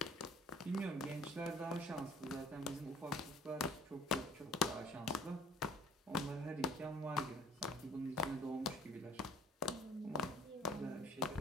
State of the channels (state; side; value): normal; both; correlation 0.51